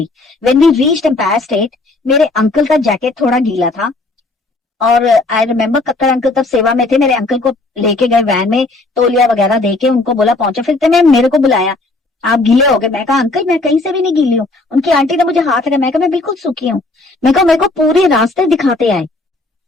When we reached Empire State, मेरे अंकल का जैकेट थोड़ा गीला था और आई रिमेम्बर कक्कर अंकल तब सेवा में थे, मेरे अंकल को लेके गए वैन में, तौलिया वगैरह देके उनको बोला पहुंचे, फिर मैं मेरे को बुलाया, आप गीले हो गए। मैं कहा अंकल मैं कहीं से भी नहीं गीली हूँ। उनकी आंटी ने मुझे हाथ लगाया, मैं कहा मैं बिल्कुल सूखी हूँ। मैं कहा मेरे को पूरे रास्ते दिखाते आए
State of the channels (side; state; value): right; quieter; 3.1 dB